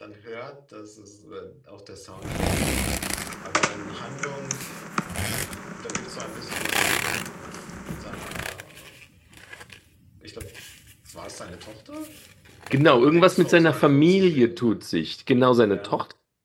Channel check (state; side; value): identical; both; correlation 1.00